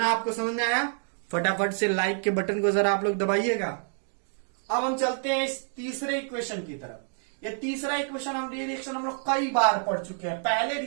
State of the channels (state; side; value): silent; left; 59 dB below the other